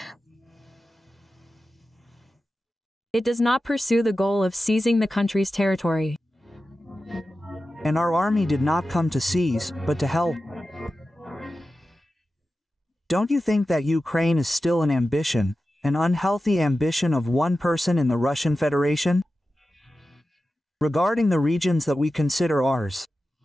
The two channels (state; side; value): normal; both; correlation 0.93